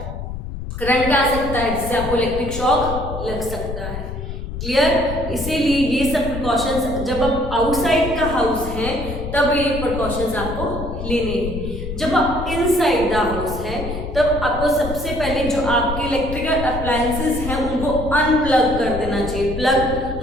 करंट आ सकता है, जिससे आपको इलेक्ट्रिक शॉक लग सकता है। क्लियर? इसीलिए ये सब प्रिकॉशंस, जब आप आउटसाइड का हाउस है तब ये प्रिकॉशंस आपको लेने हैं। जब आप इनसाइड द हाउस है तब आपको सबसे पहले जो आपके इलेक्ट्रिकल अप्लायंसेस हैं उनको अनप्लग कर देना चाहिए, प्लग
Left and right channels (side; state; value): left; noise; rumble, 7 dB below the sound